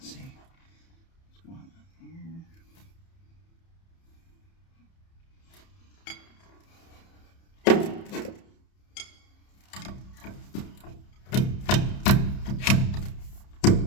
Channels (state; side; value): late; right; 30 ms